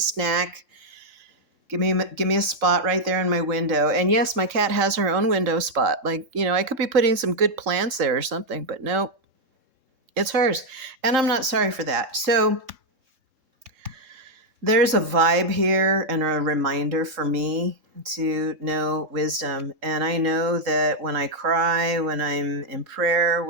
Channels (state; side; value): late; left; 3.7 ms